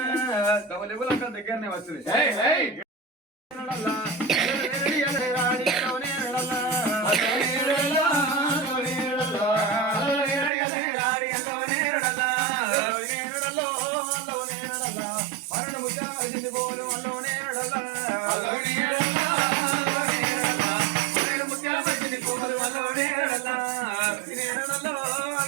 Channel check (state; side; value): drops out; left; at 10.5 s